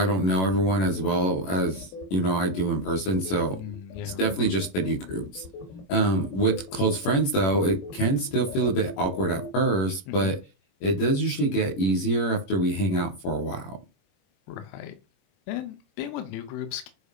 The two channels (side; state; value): right; late; 21 ms